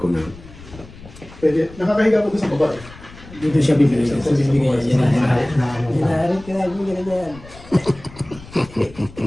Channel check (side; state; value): left; noise; rumble, 19 dB below the sound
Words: na. Pwede. Nakakahiga ko doon sa baba eh. Dito siya bibili. Ito bibigay yan. Na ano pa.